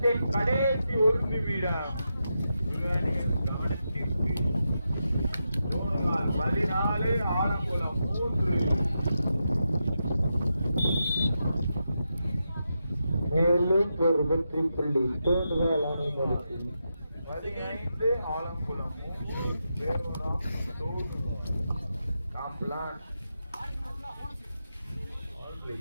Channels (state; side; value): inverted; both; correlation -0.87